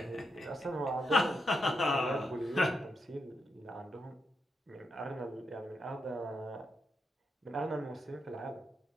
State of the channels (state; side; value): normal; both; correlation 0.82